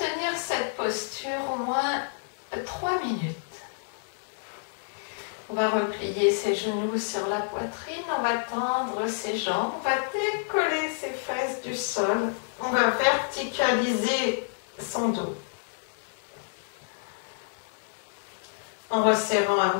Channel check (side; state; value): right; silent; digital silence